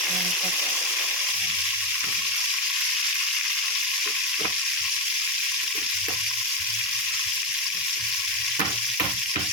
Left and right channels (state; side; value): normal; both; correlation 0.10